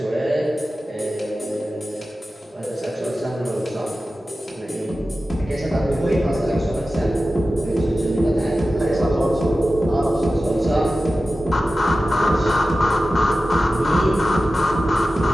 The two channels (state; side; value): normal; both; correlation 0.94